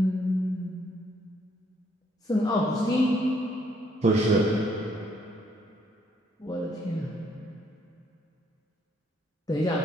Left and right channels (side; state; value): both; normal; correlation 0.69